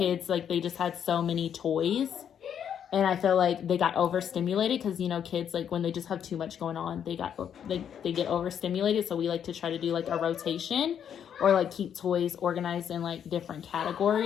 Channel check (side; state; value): right; quieter; 8.7 dB